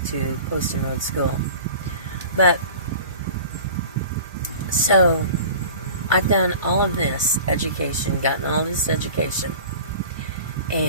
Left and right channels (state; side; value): inverted; both; correlation -0.40